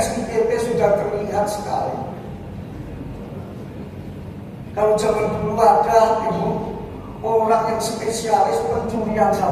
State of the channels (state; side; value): identical; both; correlation 1.00